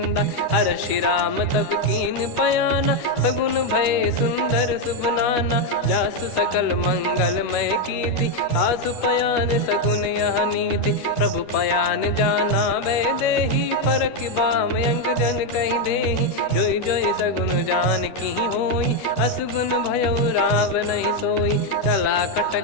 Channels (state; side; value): late; right; 12 ms